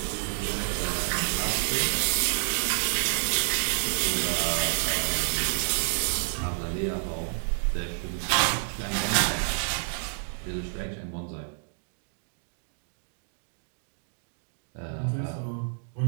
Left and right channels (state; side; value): silent; left; digital silence